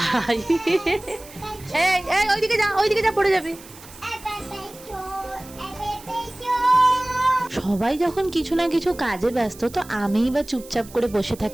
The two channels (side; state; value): right; noise; hiss, 20 dB below the sound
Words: এই এই ওইদিকে যা, ওইদিকে যা, পড়ে যাবি। সবাই যখন কিছু না কিছু কাজে ব্যস্ত, তো আমিই বা চুপচাপ করে বসে